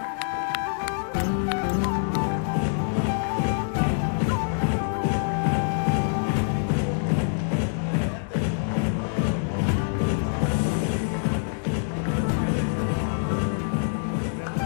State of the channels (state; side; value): silent; right; digital silence